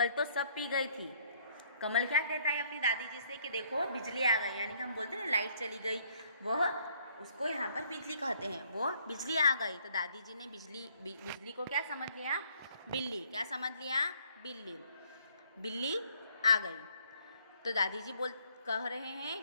तो सब पी गई थी। कमल क्या कहता है अपनी दादी जी से कि देखो बिजली आ गई, यानी कि हम बोलते हैं ना लाइट चली गई, वह उसको यहाँ पर बिजली कहते हैं। वो बिजली आ गई तो दादी जी ने बिजली को क्या समझ लिया? बिल्ली। क्या समझ लिया? बिल्ली। बिल्ली आ गई तो दादी जी कह रहे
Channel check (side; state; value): both; inverted; correlation -0.64